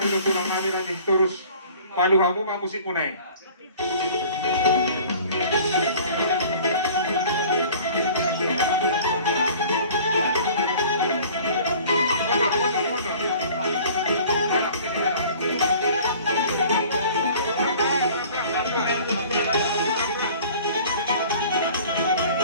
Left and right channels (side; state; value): both; inverted; correlation -0.48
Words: tulang nami nanti terus palu hamu ma musik kunai.